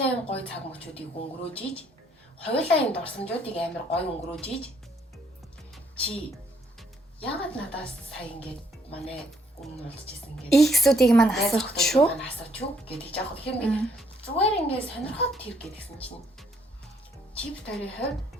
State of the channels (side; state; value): both; normal; correlation 0.68